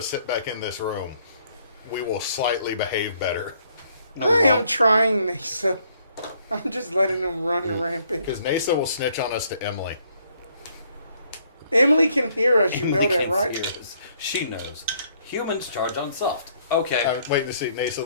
sit back in this room, we will slightly behave better. I am trying, Neysa. I'm just letting them run rampant. Because Neysa will snitch on us to Emily. Emily can hear us, you know Emily that, can't right? hear us. She knows. Humans charge on soft. Okay. I'm waiting to see. Neysa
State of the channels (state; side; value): inverted; both; correlation -0.67